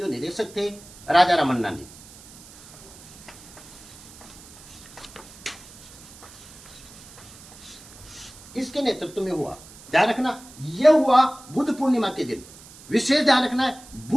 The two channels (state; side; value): noise; right; hiss, 20 dB below the sound